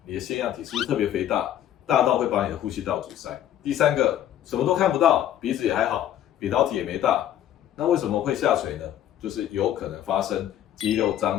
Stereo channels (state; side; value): quieter; right; 11.5 dB